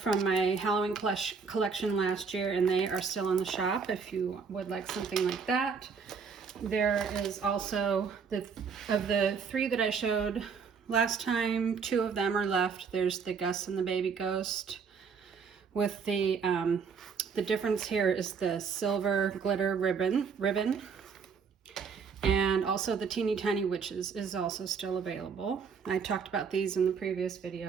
from my Halloween collection last year, and they are still in the shop if you would like something like that. There is also, of the 3 that I showed last time, 2 of them are left. There's the Gus and the Baby Ghost with the difference here is the silver glitter ribbon. And also the Teeny Tiny Witches is also still available. I talked about these in the previous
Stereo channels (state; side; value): quieter; left; 5.8 dB